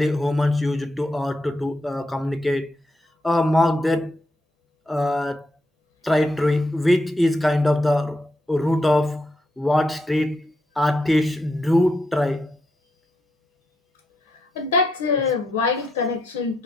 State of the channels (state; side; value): normal; both; correlation 0.81